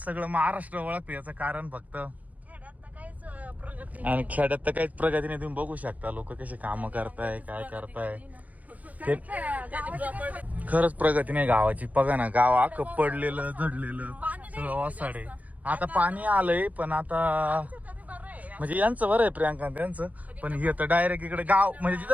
सगळं महाराष्ट्र ओळखते. याचं कारण फक्त आणि खेड्यात तर काहीच प्रगती नाही. तुम्ही बघू शकता लोक कसे काम करताय काय करताय. ते खरंच प्रगती नाही गावाची. बघा ना गाव अख्खं पडलेलं झडलेलं सगळं ओसाडे. आता पाणी आलंय पण आता म्हणजे यांचं बरं आहे प्रियांका त्यांचं. पण हे तर डायरेक्ट इकडे गाव म्हणजे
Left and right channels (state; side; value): late; left; 0.075 ms